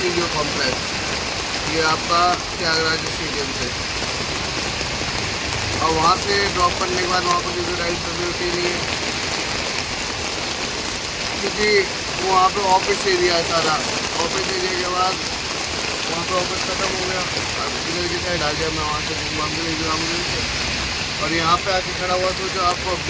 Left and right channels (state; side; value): identical; both; correlation 1.00